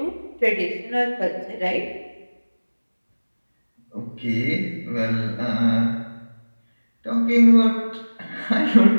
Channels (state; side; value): inverted; both; correlation -1.00